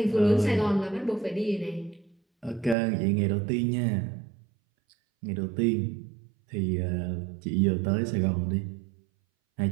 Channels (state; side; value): drops out; left; at 2.8 s